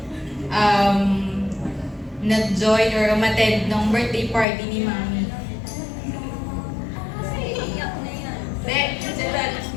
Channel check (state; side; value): drops out; right; at 4.5 s